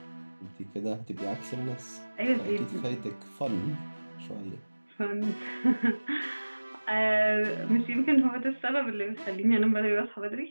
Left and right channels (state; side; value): inverted; both; correlation -1.00